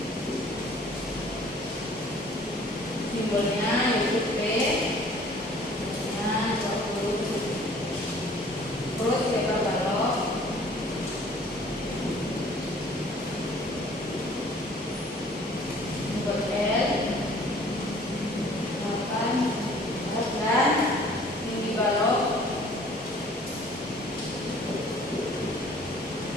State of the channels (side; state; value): both; normal; correlation 0.53